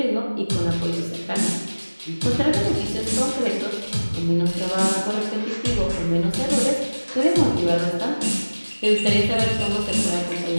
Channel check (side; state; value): both; inverted; correlation -1.00